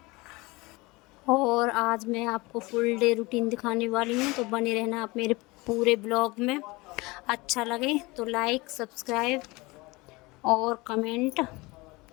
और आज मैं आपको फुल डे रूटीन दिखाने वाली हूँ। तो बने रहना आप मेरे पूरे ब्लॉग में। अच्छा लगे तो लाइक, सब्सक्राइब और कमेंट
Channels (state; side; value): quieter; right; 23.3 dB